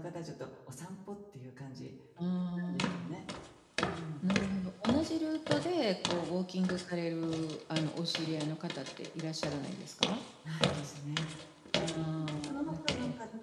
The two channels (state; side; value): identical; both; correlation 1.00